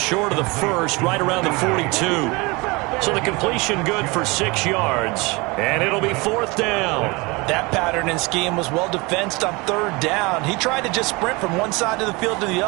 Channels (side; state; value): left; quieter; 25.7 dB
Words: of the 1st, right around the 42. So the completion good for 6 yards, and it'll be 4th down. That pattern and scheme was well defensed on 3rd down. He tried to just sprint from one side of the field to the